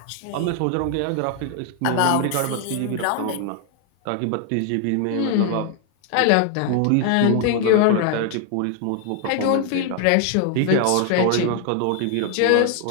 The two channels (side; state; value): both; different; correlation 0.00